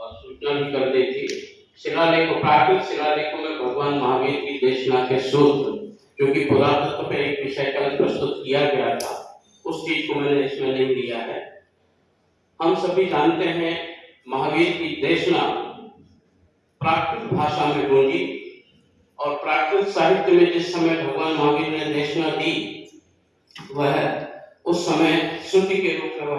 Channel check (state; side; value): identical; both; correlation 1.00